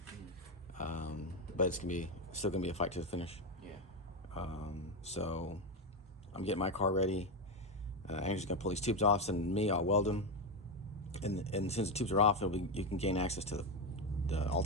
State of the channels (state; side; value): normal; both; correlation 0.10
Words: But it's still gonna be a fight to the finish. Yeah. So I'm getting my car ready. Andrew's gonna pull these tubes off, send me. I'll weld them, and since the tubes are off, you can gain access to the